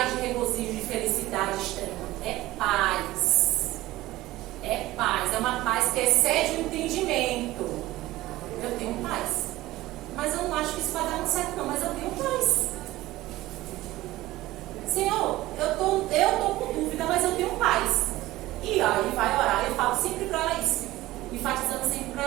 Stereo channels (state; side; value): quieter; left; 17.2 dB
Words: acho que isso vai dar muito certo não, mas eu tenho paz. Senhor, eu tô com dúvida, mas eu tenho paz. E aí vai orar, eu falo sempre para ela isso. Enfatizando sempre para